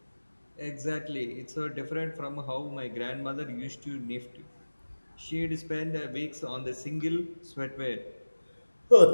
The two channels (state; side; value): inverted; both; correlation -1.00